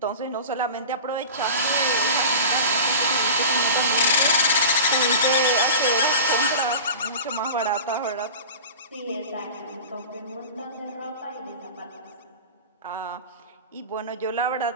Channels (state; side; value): inverted; both; correlation -0.33